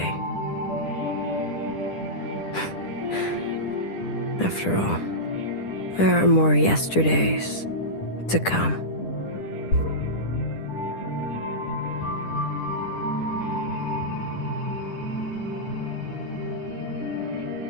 After all, there are more yesterdays to come.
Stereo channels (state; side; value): late; right; 10 ms